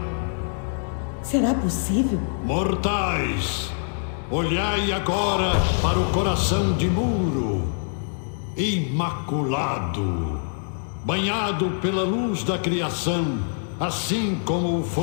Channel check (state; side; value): silent; right; digital silence